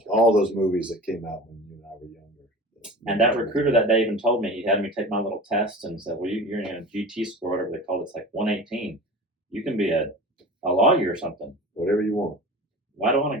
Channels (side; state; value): both; normal; correlation 0.36